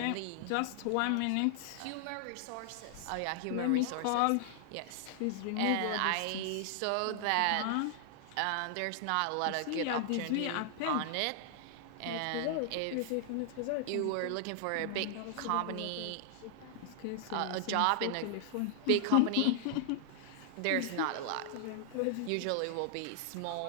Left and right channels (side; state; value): both; different; correlation 0.00